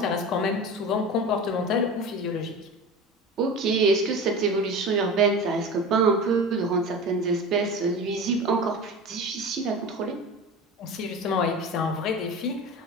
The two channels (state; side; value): normal; both; correlation 0.31